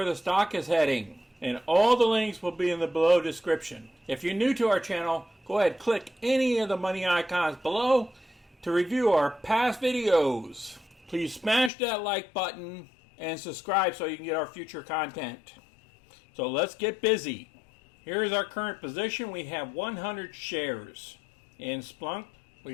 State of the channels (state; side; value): drops out; right; at 11.7 s